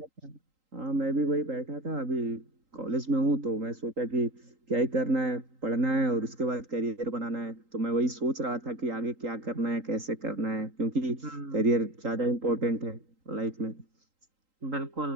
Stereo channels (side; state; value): left; late; 3.8 ms